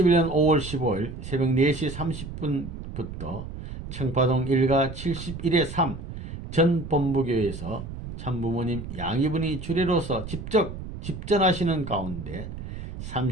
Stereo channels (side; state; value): right; noise; rumble, 9 dB below the sound